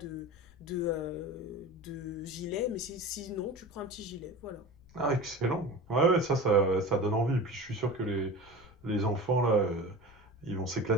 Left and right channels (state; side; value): noise; left; rumble, 25 dB below the sound